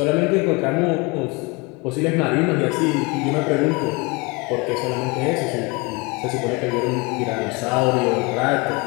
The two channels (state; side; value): quieter; right; 26.7 dB